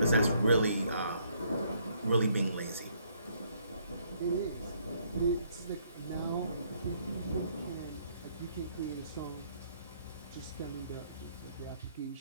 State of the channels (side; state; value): both; inverted; correlation -0.68